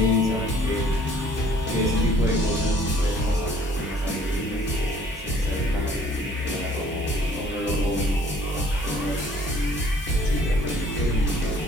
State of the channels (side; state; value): both; normal; correlation 0.57